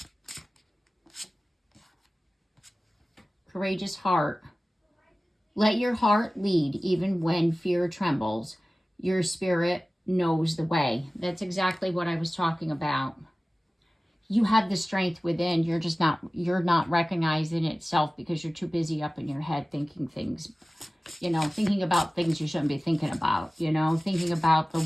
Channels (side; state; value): both; normal; correlation 0.97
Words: Courageous heart. Let your heart lead even when fear trembles. Your spirit knows the way. That's exactly what I was talking about. You have the strength within. You're not recognizing itself because you're too busy up in your head thinking things, you know, thinking about things you shouldn't be thinking about, you know, thinking about the